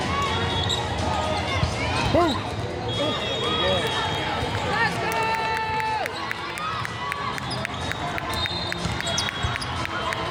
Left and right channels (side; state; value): both; identical; correlation 1.00